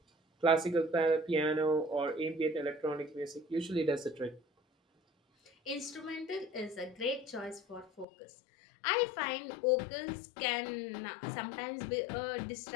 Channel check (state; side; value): drops out; right; at 8.1 s